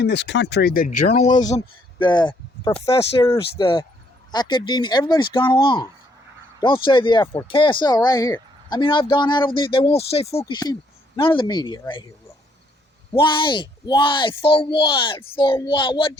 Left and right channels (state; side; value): normal; both; correlation 0.68